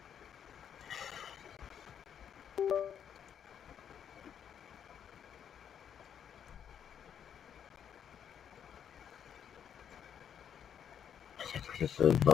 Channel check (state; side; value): quieter; right; 8.5 dB